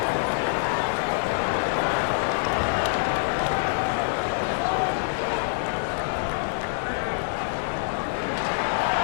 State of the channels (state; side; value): silent; right; digital silence